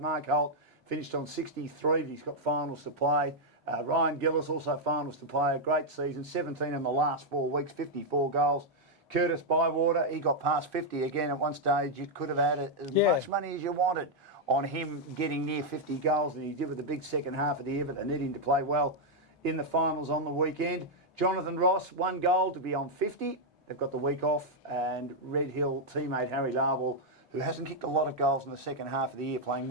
Mark Holt finished on 63, but he's got finals to play. Ryan Gillis also finals to play. A great season, 17 in the last 4 weeks, 54 goals. Curtis Bywater, he got past 50 again at one stage. You could have had as much money as you wanted on him getting near 50 goals, and he did with the big second half of the year, but they need him to play well in the finals on the weekend. Jonathan Ross, 1 goal to be on 50. They've got the week off, and Red Hill teammate Harry Larwell, who hasn't kicked a lot of goals in the second half of the year, playing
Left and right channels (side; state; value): both; normal; correlation -0.02